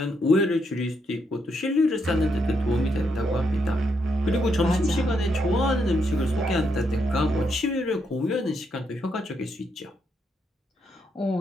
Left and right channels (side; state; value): both; normal; correlation 0.78